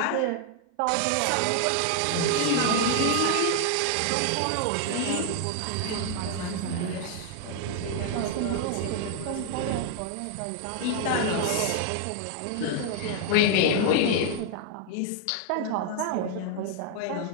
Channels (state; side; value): different; both; correlation 0.00